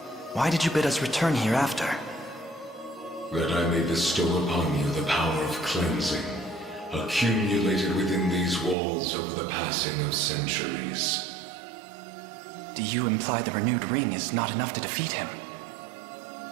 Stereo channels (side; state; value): left; drops out; at 8.8 s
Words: why did you bid us return here after? That I may bestow upon you the power of cleansing, accumulated within these walls over the passing of centuries. Do you imply the renewed ring is not enough to defeat him?